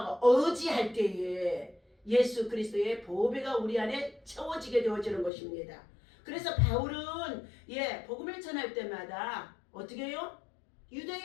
의지할 때에 예수 그리스도의 보배가 우리 안에 채워지게 되어지는 것입니다. 그래서 바울은 복음을 전할 때마다 어떻게 해요?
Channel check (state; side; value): drops out; right; at 5.3 s